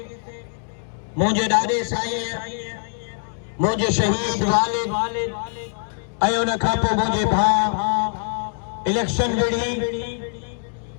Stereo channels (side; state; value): right; silent; digital silence